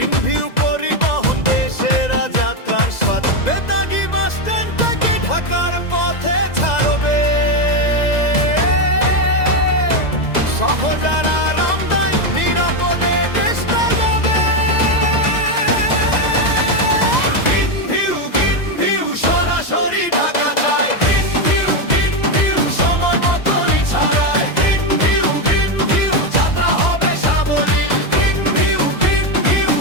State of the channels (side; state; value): right; late; 2.0 ms